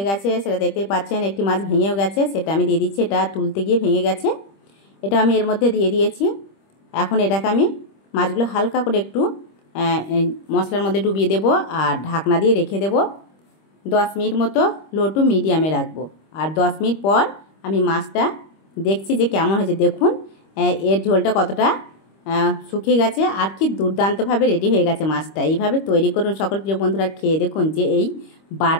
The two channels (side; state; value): right; late; 25 ms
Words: গেছে, সেটা দেখতেই পাচ্ছেন। একটি মাছ ভেঙেও গেছে, সেটা আমি দিয়ে দিচ্ছি। এটা তুলতে গিয়ে ভেঙে গেছে, এটা আমি এর মধ্যে দিয়ে দিয়েছি। এখন এটাকে আমি মাছগুলো হালকা করে একটু মশলার মধ্যে ডুবিয়ে দেব আর ঢাকনা দিয়ে রেখে দেব 10 মিনিট মতো, লো টু মিডিয়ামে রাখবো। আর 10 মিনিট পর আমি মাছটা দেখছি যে কেমন হয়েছে। দেখুন এর ঝোলটা কতটা শুকিয়ে গেছে আর কি দুর্দান্তভাবে রেডি হয়ে গেছে মাছটা। এইভাবে তৈরি করুন সকল প্রিয় বন্ধুরা, খেয়ে দেখুন যে এই